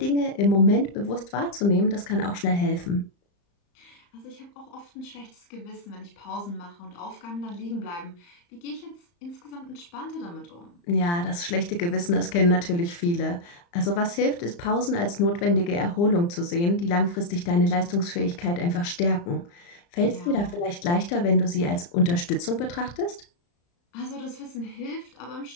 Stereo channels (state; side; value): late; right; 35 ms